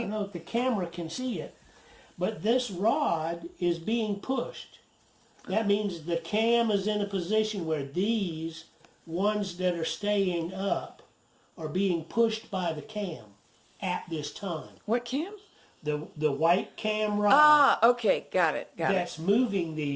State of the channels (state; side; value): identical; both; correlation 1.00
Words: know if the camera can see it, but this rod is being pushed. That means the cam is in a position where these ones that are staying up are being pushed by the cam at this time. What cam? The white cam rod. Ah, okay, got it. That's moving